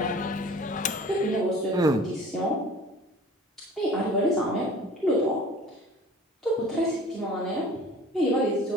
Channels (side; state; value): both; normal; correlation 0.45